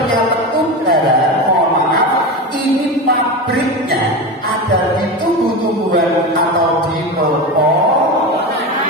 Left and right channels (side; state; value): both; normal; correlation 0.22